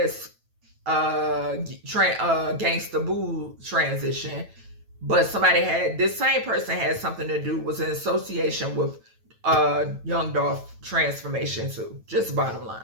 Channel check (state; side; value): late; left; 9.1 ms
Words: Gangsta Boo transition, but this same person had something to do, was in association with Young Dolph transformation too. Just bottom